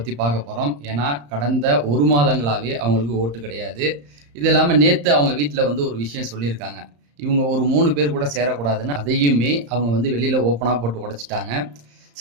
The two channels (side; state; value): left; late; 35 ms